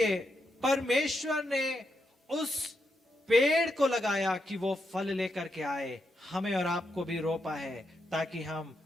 परमेश्वर ने उस पेड़ को लगाया कि वो फल लेकर के आए। हमें और आपको भी रोपा है ताकि हम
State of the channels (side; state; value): both; normal; correlation 0.83